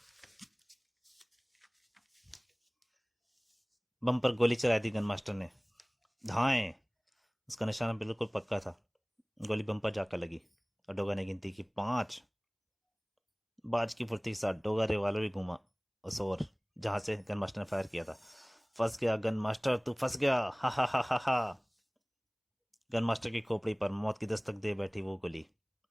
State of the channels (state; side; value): identical; both; correlation 1.00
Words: बम पर गोली चलाई दी गन मास्टर ने। धाएं। उसका निशाना बिल्कुल पक्का था। गोली बम पर जाकर लगी, और डोगा ने गिनती की 5। बाज की फुर्ती के साथ डोगा रिवाल्वर भी घूमा उस ओर जहां से गन मास्टर ने फायर किया था। फंस गया गन मास्टर, तू फंस गया। हा हा हा हा हा। गन मास्टर की खोपड़ी पर मौत की दस्तक दे बैठी वो गोली।